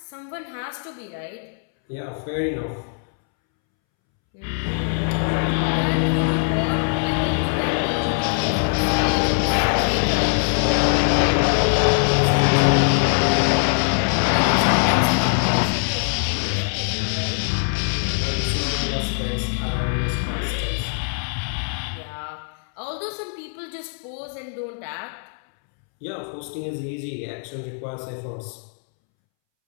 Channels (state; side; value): silent; right; 64 dB below the other